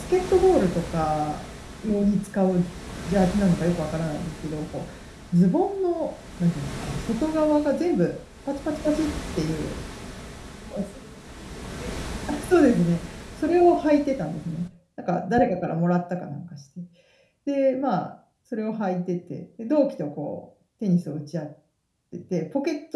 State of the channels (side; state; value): both; identical; correlation 1.00